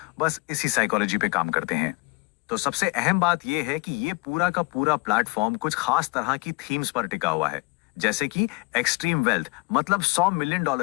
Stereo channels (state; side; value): quieter; right; 29.1 dB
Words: बस इसी साइकोलॉजी पे काम करते हैं। तो सबसे अहम बात यह है कि ये पूरा का पूरा प्लेटफॉर्म कुछ खास तरह की थीम्स पर टिका हुआ है, जैसे कि एक्सट्रीम वेल्थ मतलब $100 मिलियन